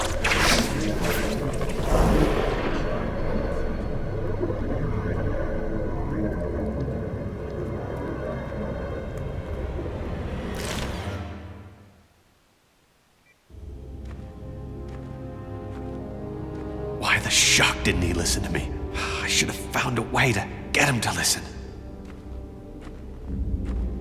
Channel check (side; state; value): both; identical; correlation 1.00